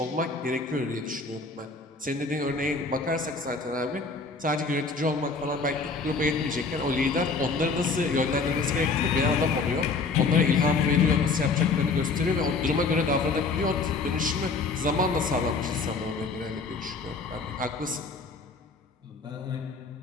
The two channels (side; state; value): right; quieter; 4.2 dB